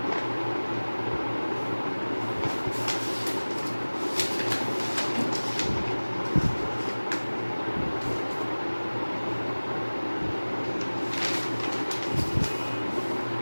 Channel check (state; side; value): inverted; both; correlation -1.00